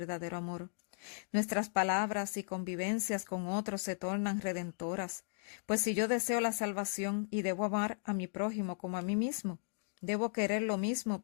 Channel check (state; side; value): silent; right; digital silence